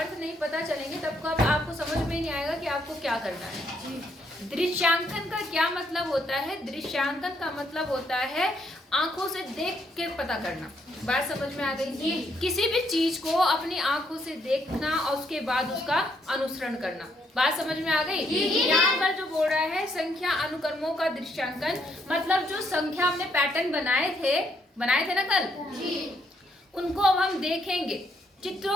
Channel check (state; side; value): normal; both; correlation 0.73